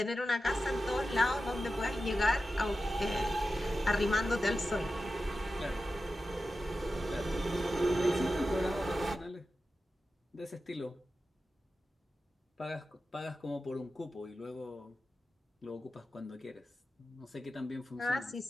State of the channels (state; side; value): normal; both; correlation 0.92